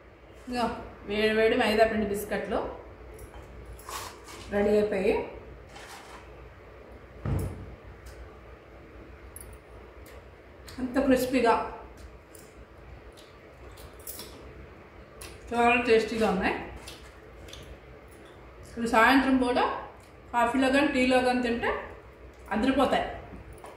ఇంకా వేడి వేడి మైదా పిండి బిస్కెట్లు రెడీ అయిపోయి అంత క్రిస్పీగా చాలా టేస్టీగా ఉన్నాయి. ఇప్పుడు సాయంత్రం పూట కాఫీలో కానీ టీలో కానీ తింటే అదిరిపోతాయి.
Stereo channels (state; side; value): identical; both; correlation 1.00